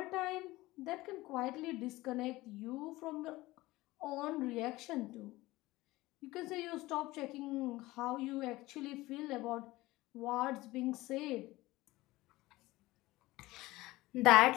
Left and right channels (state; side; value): quieter; right; 19.0 dB